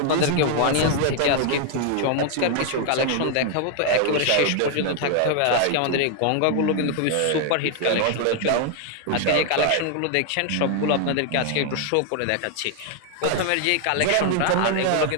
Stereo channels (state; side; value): different; both; correlation 0.00